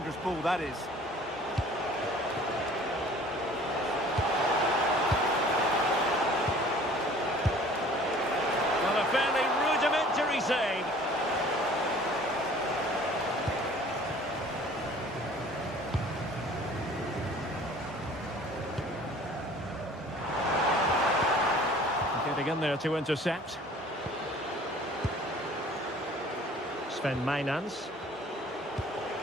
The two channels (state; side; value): normal; both; correlation 0.50